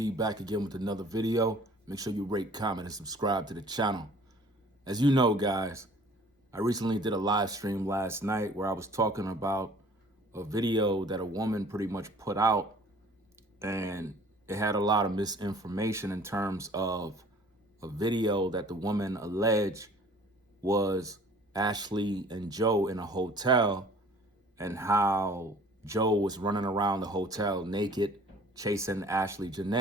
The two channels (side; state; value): both; normal; correlation 0.51